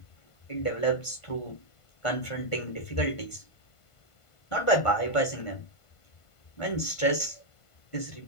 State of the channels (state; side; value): late; right; 1.5 ms